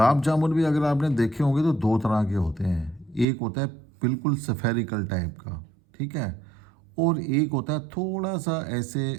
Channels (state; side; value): drops out; left; at 3.2 s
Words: जामुन भी अगर आपने देखे होंगे तो दो तरह के होते हैं। एक होता है बिल्कुल सफेरिकल टाइप का, ठीक है, और एक होता है थोड़ा सा ऐसे